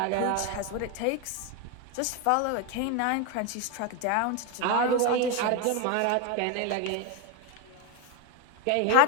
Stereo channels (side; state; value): both; different; correlation 0.02